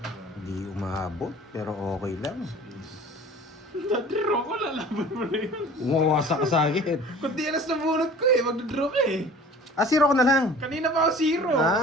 Hindi umaabot, pero okay lang. Nag-draw ko, lalaban mo na yun. Umawasak ka sa akin. Kundi alas na bunot ko eh, mag-draw ka eh. Ah, zero ko na lang. Kanina pa ako zero.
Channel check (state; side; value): normal; both; correlation 0.45